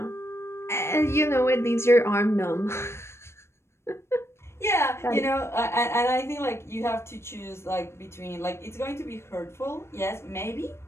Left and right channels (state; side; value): late; right; 0.13 ms